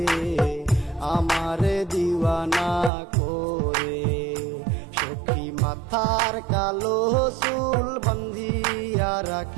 আমারে দিওয়ানা করে। সখী মাথার কালো চুল বান্ধিয়া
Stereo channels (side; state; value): left; drops out; at 2.9 s